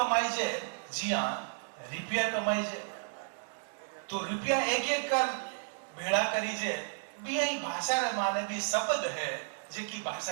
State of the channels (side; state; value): left; silent; digital silence